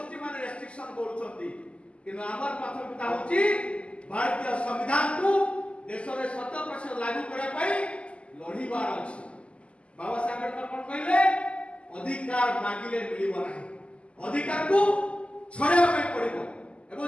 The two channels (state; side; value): late; right; 0.060 ms